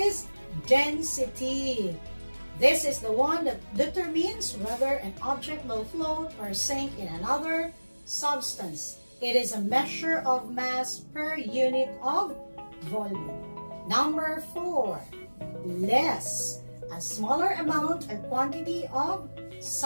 density. This is the one that determines whether an object will float or sink in another substance. It is a measure of mass per unit of volume. Number 4, less. A smaller amount or quantity of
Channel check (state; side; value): inverted; both; correlation -1.00